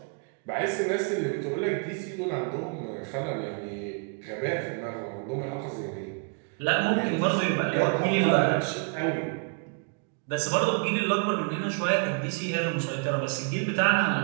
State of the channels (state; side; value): quieter; left; 39.0 dB